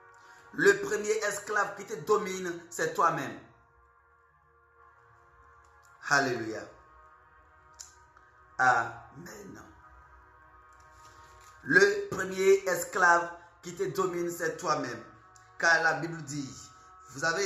Le premier esclave qui te domine, c'est toi-même. Alléluia. Amen. Le premier esclave qui te domine, c'est toi-même. Car la Bible dit, vous avez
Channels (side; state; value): both; identical; correlation 1.00